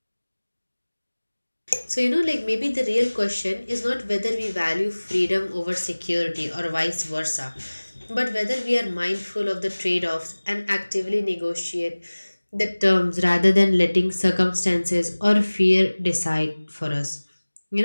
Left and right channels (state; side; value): inverted; both; correlation -1.00